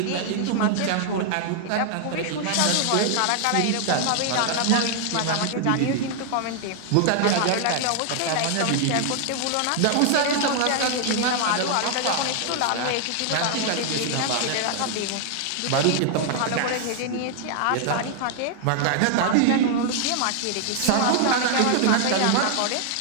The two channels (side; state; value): both; different; correlation 0.00